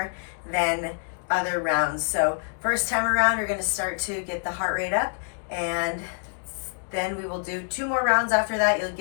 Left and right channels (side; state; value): right; silent; digital silence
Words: than other rounds. So first time around, we're gonna start to get the heart rate up, and then we will do 2 more rounds after that. You'll